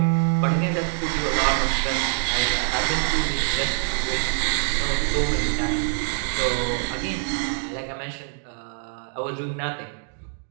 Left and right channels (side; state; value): left; silent; digital silence